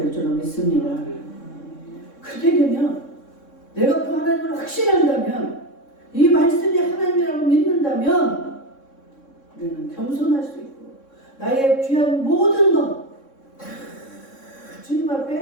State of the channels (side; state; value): right; late; 3.6 ms